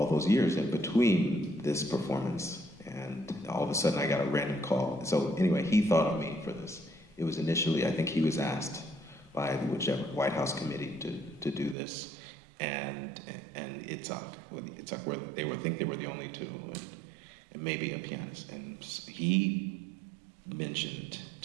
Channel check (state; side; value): drops out; left; at 11.8 s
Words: those years in between this performance. And all of a sudden I got a random call. So anyway, he thought of me for this. It was initially, I think he was asked by whichever White House committee to do this. And Itzhak, where they would think they were the only two, and maybe a pianist. And he mentioned